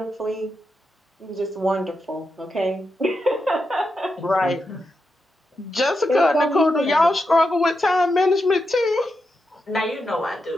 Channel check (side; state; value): both; normal; correlation 0.86